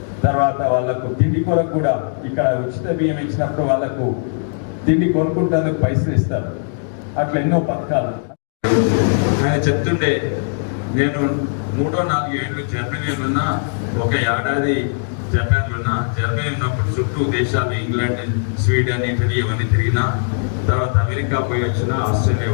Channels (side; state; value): right; silent; digital silence